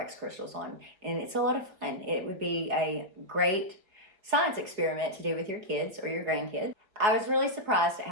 crystals on. And it's a lot of fun. It would be a great science experiment to do with your kids or your grandkids. I was really surprised at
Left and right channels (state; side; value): late; left; 4.7 ms